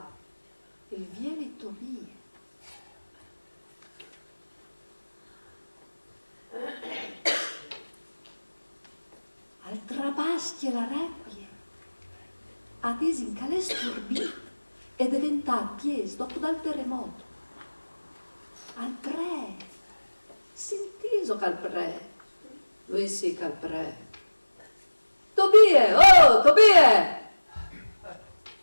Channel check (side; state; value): both; inverted; correlation -1.00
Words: il vieni Tobie. Al trabaschi la requie, ad in calè sturbì e diventato pies dopo dal terremoto. Al pre, sentiso cal pre, lui sì cal pre. Tobie, oh, Tobie!